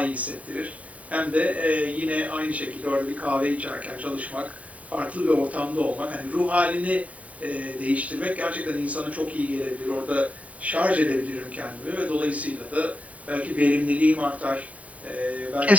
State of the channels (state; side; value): late; left; 0.068 ms